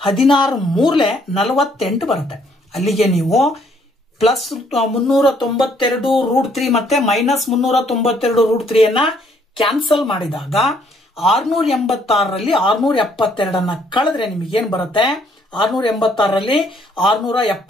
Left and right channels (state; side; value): normal; both; correlation 0.66